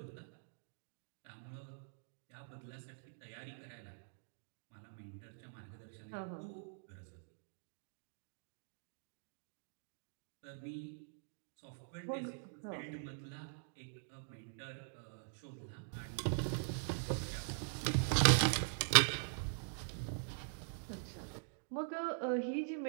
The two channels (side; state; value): left; silent; digital silence